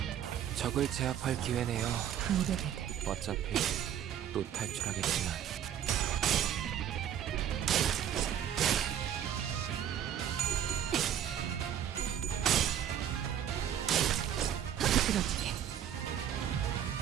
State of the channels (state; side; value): quieter; left; 9.9 dB